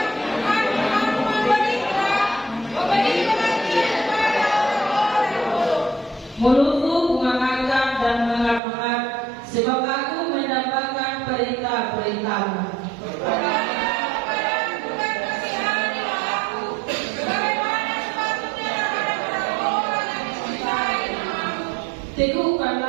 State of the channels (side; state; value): left; drops out; at 8.6 s